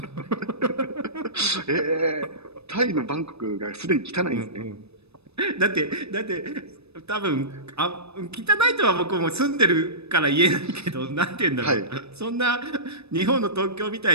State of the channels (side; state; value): left; late; 0.79 ms